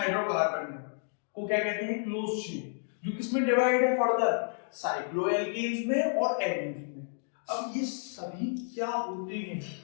को क्या कहते हैं? क्लोज चेन, जो किसमें डिवाइड है फर्दर? साइक्लोएल्केन्स में और एल्कीन्स में। अब ये सभी क्या होते हैं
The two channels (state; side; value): silent; right; digital silence